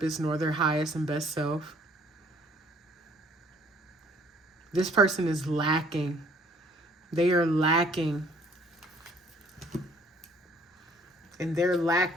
nor their highest and best self. This person is lacking. They are lacking. And their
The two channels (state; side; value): normal; both; correlation 0.59